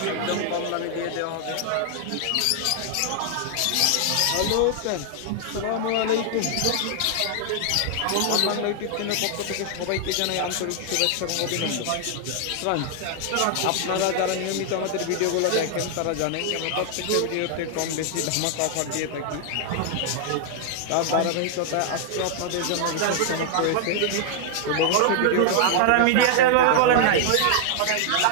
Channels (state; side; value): different; both; correlation 0.00